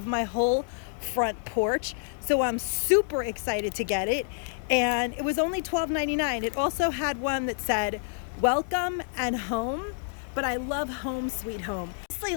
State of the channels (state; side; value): silent; right; digital silence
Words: my whole front porch. So I'm super excited to get it. And it was only $12.99. It also had one that said, welcome and home. But I love home sweet home. Honestly,